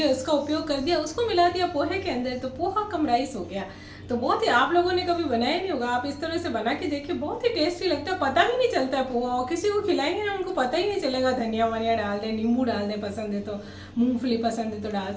उसका उपयोग कर दिया, उसको मिला दिया पोहे के अंदर, तो पोहा कम राइस हो गया। तो बहुत ही, आप लोगों ने कभी बनाया नहीं होगा, आप इस तरह से बना के देखिए, बहुत ही टेस्टी लगता है, पता भी नहीं चलता है पोहा। और किसी को खिलाएंगे ना उनको पता ही नहीं चलेगा। धनिया वनिया डाल दें, नींबू डाल दें, पसंद है तो मूंगफली पसंद है तो डाल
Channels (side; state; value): both; identical; correlation 1.00